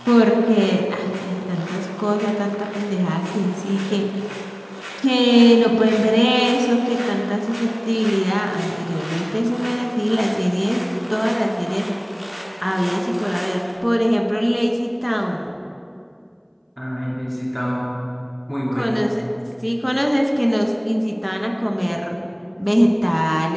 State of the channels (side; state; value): both; identical; correlation 1.00